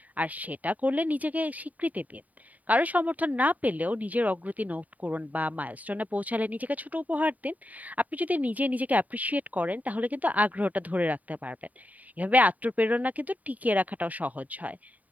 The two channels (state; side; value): late; left; 0.074 ms